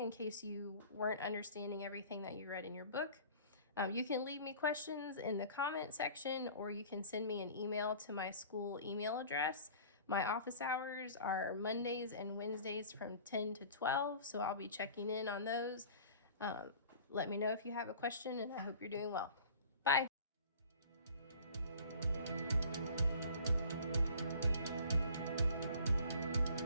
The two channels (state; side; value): inverted; both; correlation -0.45